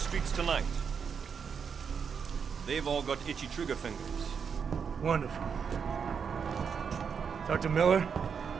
tonight. They've all got itchy trigger fingers. Wonderful. Talk to Miller?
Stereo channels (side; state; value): left; quieter; 6.5 dB